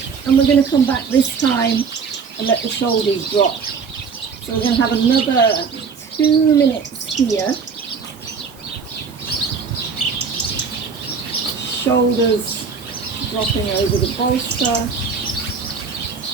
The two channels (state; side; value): quieter; left; 5.6 dB